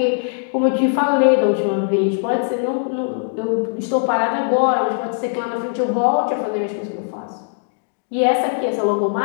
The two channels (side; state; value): right; silent; digital silence